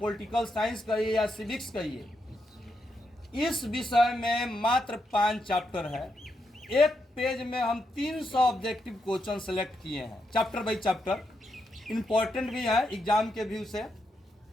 साइंस कहिए या सिविक्स कहिए, इस विषय में मात्र 5 चैप्टर है। एक पेज में हम 300 ऑब्जेक्टिव क्वेश्चन सेलेक्ट किए हैं, चैप्टर बाई चैप्टर। इम्पोर्टेंट भी है एग्जाम के व्यू से।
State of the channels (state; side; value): normal; both; correlation 0.82